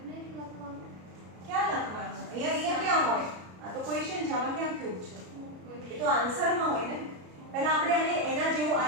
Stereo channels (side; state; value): left; late; 33 ms